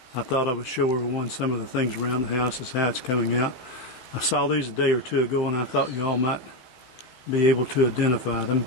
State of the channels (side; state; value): right; late; 16 ms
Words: I thought I would show everyone some of the things around the house, as how it's coming out. I saw these a day or two ago and I thought y'all might be able to identify them.